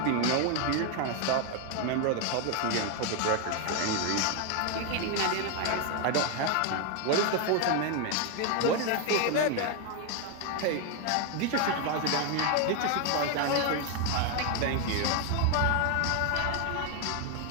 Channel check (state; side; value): different; both; correlation 0.01